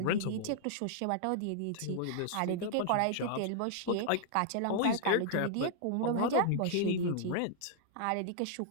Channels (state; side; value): different; both; correlation -0.01